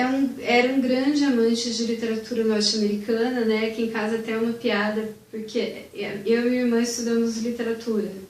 um grande amante de literatura norte-americana, né? Que em casa até é uma piada, porque eu e minha irmã estudamos literatura,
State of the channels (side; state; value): both; identical; correlation 1.00